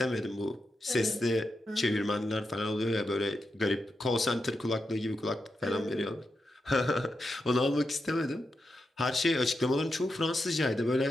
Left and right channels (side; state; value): both; normal; correlation 0.87